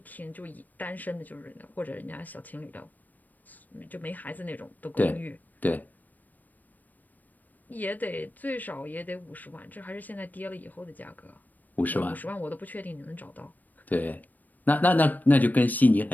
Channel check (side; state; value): right; late; 0.084 ms